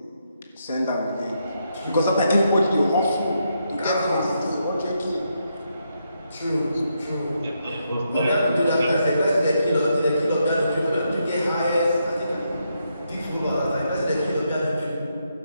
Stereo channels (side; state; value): both; inverted; correlation -0.80